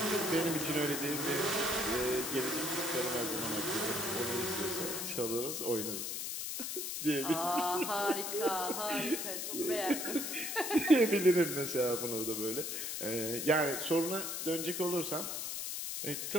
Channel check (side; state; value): left; noise; hiss, 3 dB below the sound